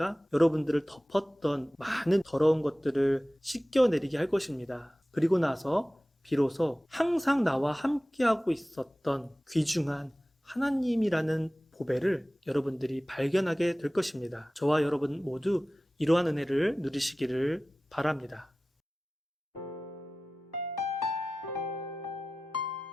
여러분들을 덮었던 많은 더러운 것들을 씻겨내리게 할 것입니다. 그리고 나서 비로소 항상 나와 함께하고 있었던 귀중한 하나님이라는 보배를 여러분들이 발견하게 될 것입니다. 저와 여러분 모두 이러한 은혜를 누리시기를 바랍니다.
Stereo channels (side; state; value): both; normal; correlation 0.96